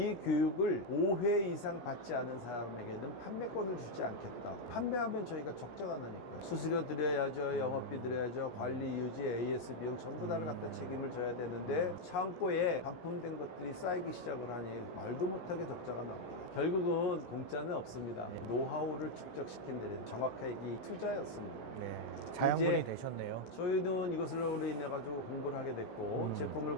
교육을 5회 이상 받지 않은 사람에게는 판매권을 주지 않겠다. 판매하면 저희가 적자가 나니까. 수수료 드려야죠. 영업비 드려야죠. 관리, 유지, AS 비용 전부 다를 갖다 책임을 져야 되는데 창고에 반품된 것들이 쌓이기 시작을 하니 말도 못하게 적자가 납니다. 결국은 공짜는 없습니다. 노하우를 축적시킨 데는 정확하게 이 투자였습니다. 네. 자양분이 이제 되셨네요. 저희는 이것으로 인해 가지고 공부를 하게 됐고 제품을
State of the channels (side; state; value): right; late; 17 ms